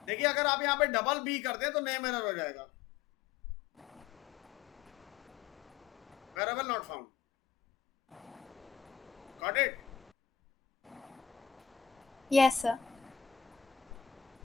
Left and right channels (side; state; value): right; quieter; 8.0 dB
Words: देखिए, अगर आप यहाँ पे डबल बी करते हैं तो नेम एरर हो जाएगा. Variable not found. Got it? Yes sir.